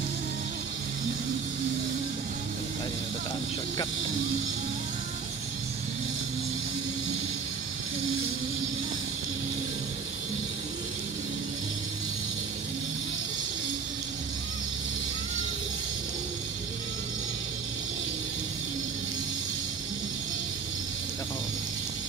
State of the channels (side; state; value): left; quieter; 5.7 dB